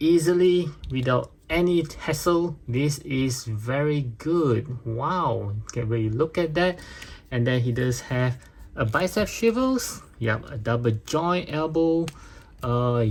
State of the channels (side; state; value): both; identical; correlation 1.00